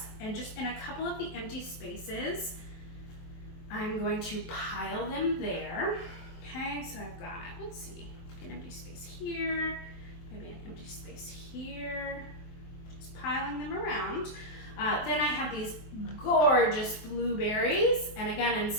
and just in a couple of the empty spaces, I'm going to pile them there. Okay, so I've got, let's see, an empty space here, maybe an empty space here. Piling them around. Then I have these gorgeous blueberries, and again in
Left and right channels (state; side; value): late; right; 23 ms